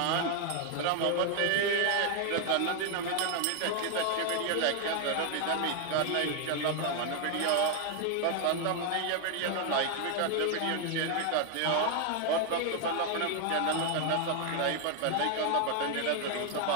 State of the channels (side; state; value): both; different; correlation 0.00